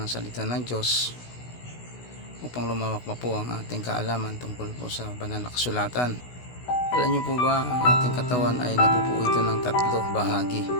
salita ng Diyos upang lumawak pa po ang ating kaalaman tungkol po sa banal na kasulatan. Alam niyo po ba, ang ating katawan ay nabubuo ito ng 3 bahagi.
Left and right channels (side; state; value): right; late; 16 ms